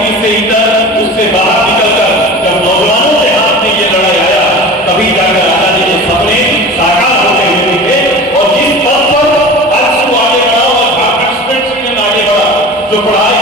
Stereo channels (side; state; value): both; normal; correlation 0.35